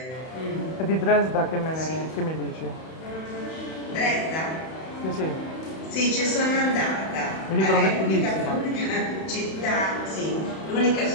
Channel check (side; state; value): right; late; 31 ms